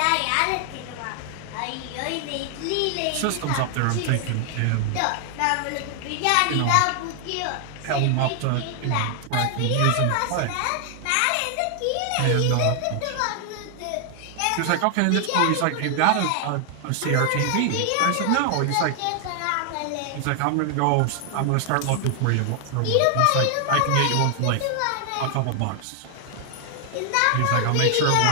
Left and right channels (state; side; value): different; both; correlation 0.00